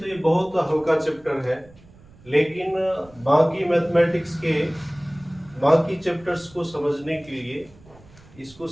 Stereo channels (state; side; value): noise; right; rumble, 24 dB below the sound